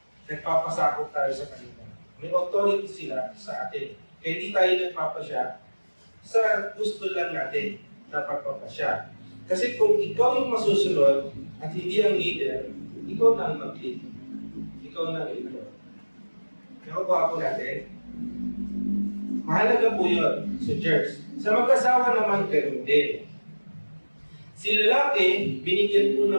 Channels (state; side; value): inverted; both; correlation -1.00